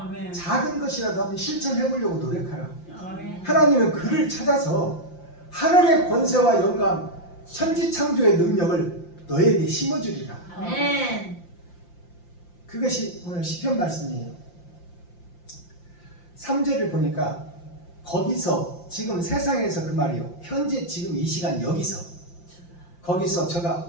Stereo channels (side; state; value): right; late; 5.8 ms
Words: 작은 것이라도 한번 실천해보려고 노력하라. 아멘. 하나님은 그를 찾아서 하늘의 권세와 영광 천지창조의 능력을 너에게 심어주리라. 아멘. 그것이 오늘 시편 말씀이에요. 3절을 보니까 거기서 지금 세상에서 그 말이요. 현재 지금 이 시간 여기서 거기서